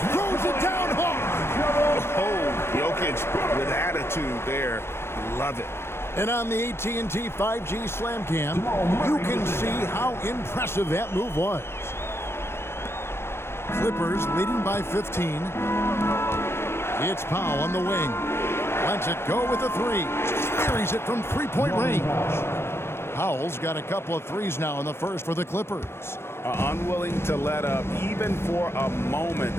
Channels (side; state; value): right; late; 0.12 ms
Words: throws it down hard. Oh, Jokic with attitude there. Love it. And on the AT&T 5G Slam Cam, you can see how impressive that move was. Clippers leading by 15. It's Powell on the wing. Lets it go with a 3. Carries it from 3-point range. Powell's got a couple of 3s now in the first for the Clippers. Unwilling to let up even for a moment.